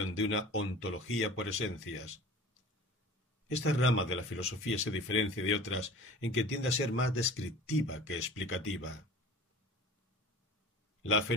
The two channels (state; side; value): normal; both; correlation 0.41